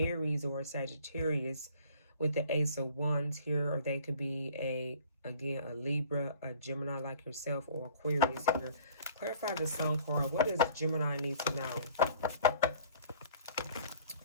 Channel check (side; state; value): both; inverted; correlation -0.52